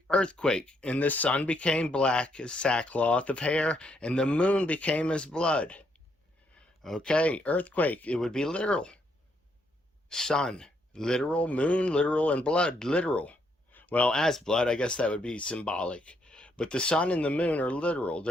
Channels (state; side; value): normal; both; correlation 0.74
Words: earthquake, and the sun became black as sackcloth of hair, and the moon became as blood. Okay, earthquake, it would be literal. Sun, literal. Moon, literal. And blood, literal. Well, as blood, I guess that would be symbolic. But the sun and the moon are literal.